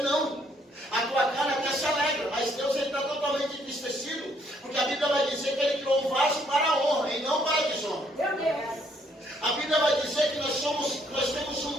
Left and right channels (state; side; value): normal; both; correlation 0.68